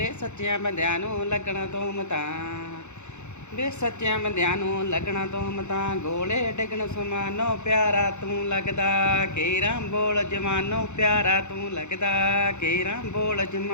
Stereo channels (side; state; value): right; late; 0.83 ms